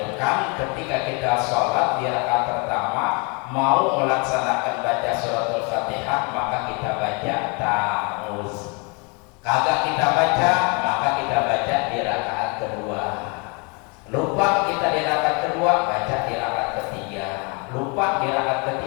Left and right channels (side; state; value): right; quieter; 32.1 dB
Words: ketika kita sholat di rakaat pertama mau melaksanakan baca suratul Fatihah, maka kita baca ta'awuz. Kagak kita baca, maka kita baca di rakaat kedua. Lupa kita di rakaat kedua, baca di rakaat ketiga. Lupa di rakaat